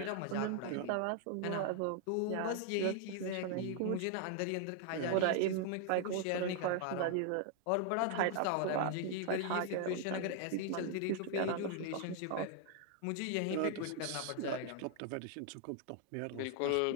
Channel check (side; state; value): both; different; correlation 0.00